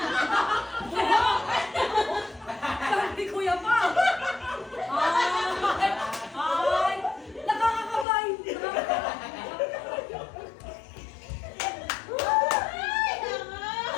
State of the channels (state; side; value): drops out; right; at 8.1 s